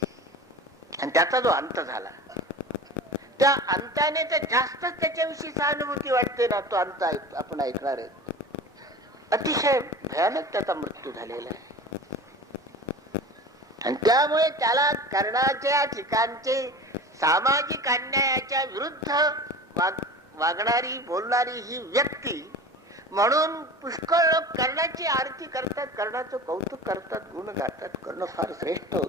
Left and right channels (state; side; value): normal; both; correlation 0.36